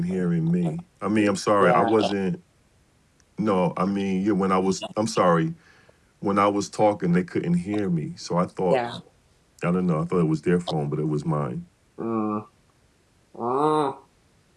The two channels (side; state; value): both; identical; correlation 1.00